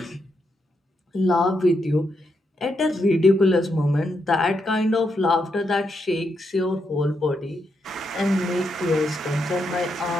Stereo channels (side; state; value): both; normal; correlation 0.81